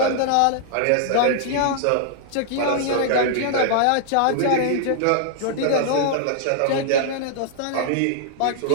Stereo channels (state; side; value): different; both; correlation -0.01